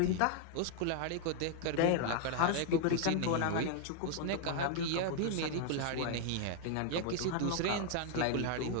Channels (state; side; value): different; both; correlation 0.00